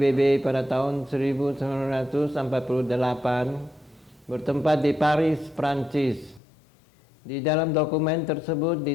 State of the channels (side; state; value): right; drops out; at 6.4 s